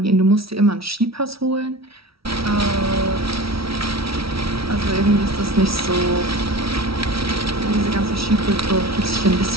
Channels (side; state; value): left; late; 0.75 ms